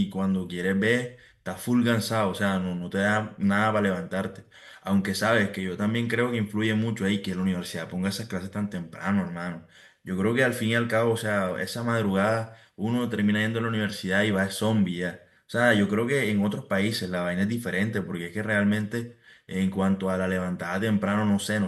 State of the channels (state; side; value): identical; both; correlation 1.00